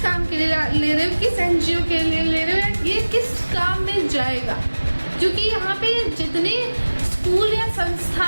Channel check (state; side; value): inverted; both; correlation -1.00